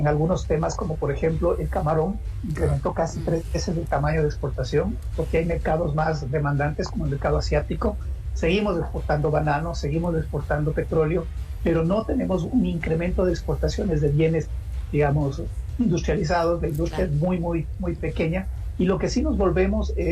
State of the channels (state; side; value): identical; both; correlation 1.00